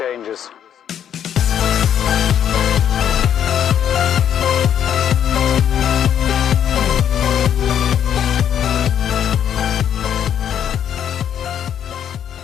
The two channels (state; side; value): quieter; right; 9.4 dB